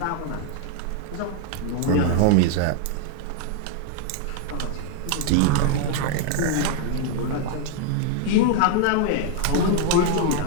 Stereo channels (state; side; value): different; both; correlation 0.00